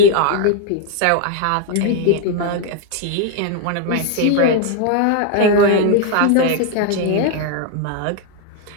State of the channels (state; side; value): different; both; correlation 0.00